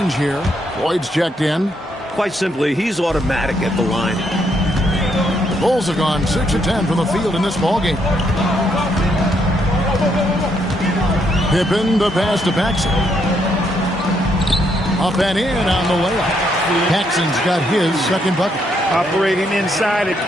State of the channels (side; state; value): both; normal; correlation 0.74